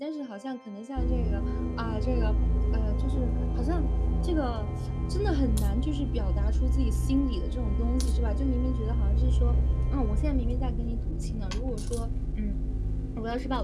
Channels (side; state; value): both; identical; correlation 1.00